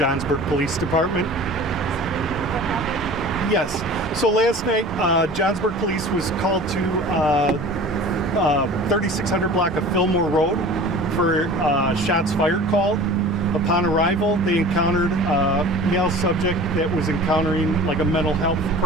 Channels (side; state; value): both; normal; correlation 0.41